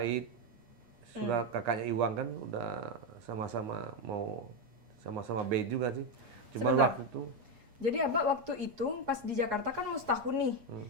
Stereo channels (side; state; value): left; late; 8.4 ms